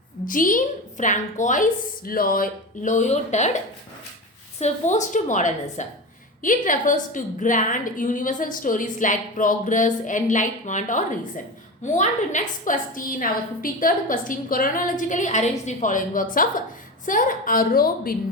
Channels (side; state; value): both; normal; correlation 0.24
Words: Jean-Francois Lyotard, postmodernism. It refers to grand universal stories like progress, enlightenment or reason. Move on to next question. Our 53rd question. Chronologically arrange the following works of Sir